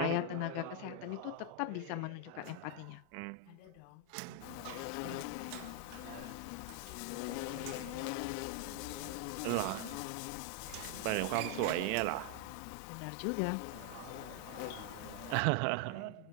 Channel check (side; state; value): both; different; correlation 0.00